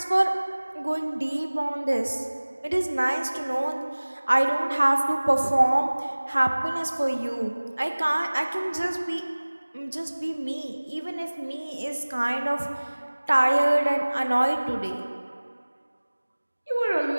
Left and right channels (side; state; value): both; inverted; correlation -1.00